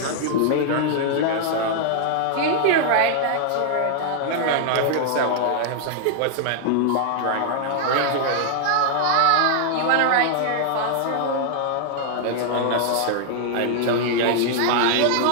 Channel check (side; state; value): both; different; correlation 0.00